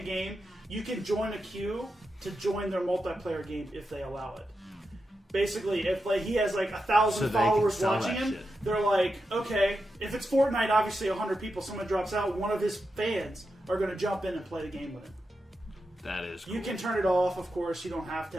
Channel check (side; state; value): both; normal; correlation 0.88